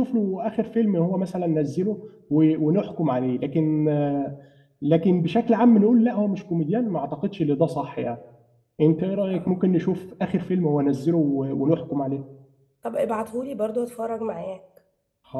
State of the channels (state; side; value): identical; both; correlation 1.00